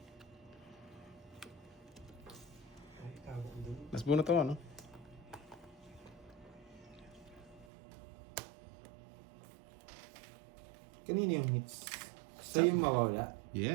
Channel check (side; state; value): left; drops out; at 7.7 s